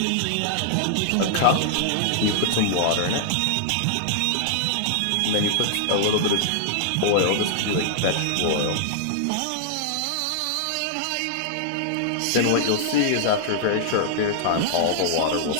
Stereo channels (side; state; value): both; different; correlation -0.01